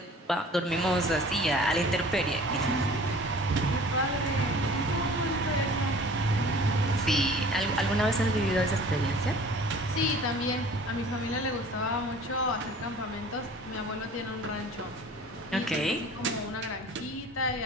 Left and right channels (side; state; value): both; normal; correlation 0.46